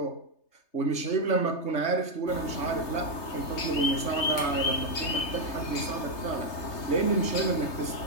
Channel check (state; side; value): late; right; 3.3 ms